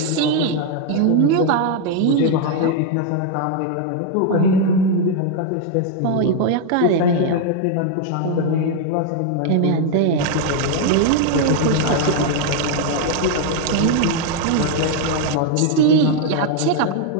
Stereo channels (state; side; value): different; both; correlation 0.00